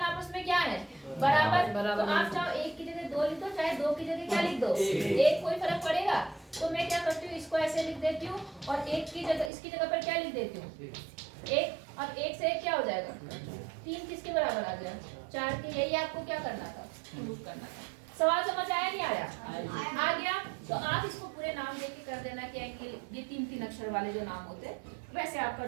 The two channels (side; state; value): left; drops out; at 9.5 s